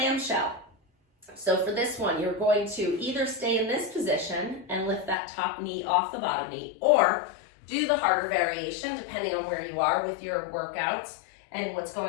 So for this one, you're going to either stay in this position and lift that top knee off the bottom knee, or do the harder variation, depending on where you are with your workouts and what's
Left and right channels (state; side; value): drops out; right; at 5.2 s